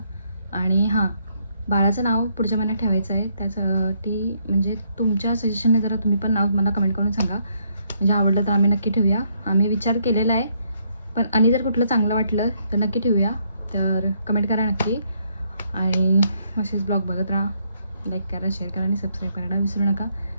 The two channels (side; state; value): both; inverted; correlation -0.72